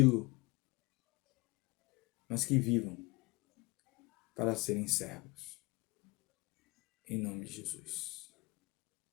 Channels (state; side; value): quieter; right; 24.7 dB